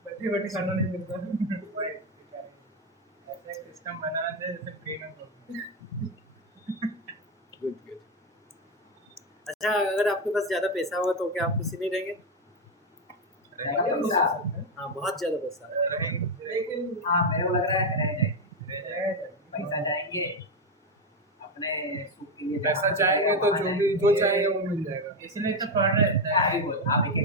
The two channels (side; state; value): both; normal; correlation 0.08